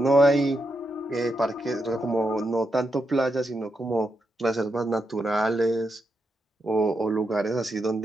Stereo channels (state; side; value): normal; both; correlation 0.84